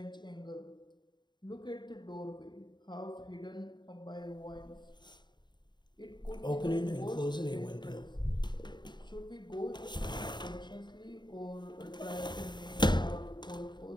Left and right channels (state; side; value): late; right; 0.22 ms